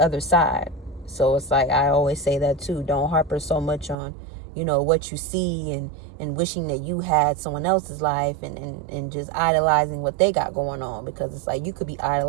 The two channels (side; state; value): left; drops out; at 4.0 s